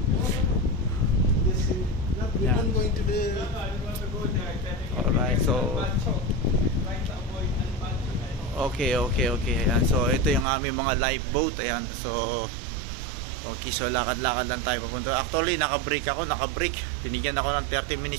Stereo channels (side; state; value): left; drops out; at 10.5 s